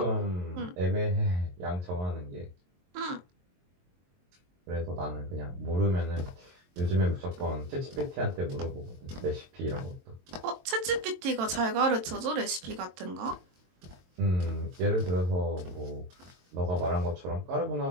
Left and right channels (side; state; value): left; late; 22 ms